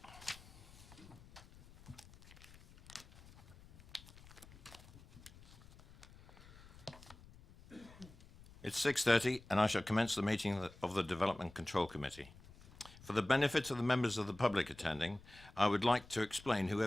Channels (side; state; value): left; noise; rumble, 21 dB below the sound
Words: It's 6:30 and I shall commence the meeting of the Development Control Committee. For the benefit of the members of the public attending, I would like to explain who